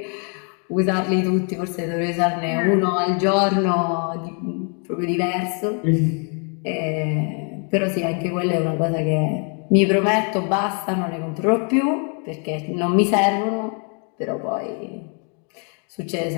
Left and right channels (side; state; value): right; quieter; 39.6 dB